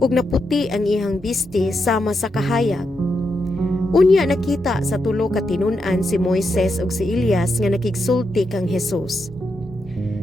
naputi ang iyang biste sama sa kahayag. Unya nakita sa tulo ka tinun-an si Moises ug si Elias nga nakigsulti kang Jesus.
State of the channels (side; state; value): both; normal; correlation 0.84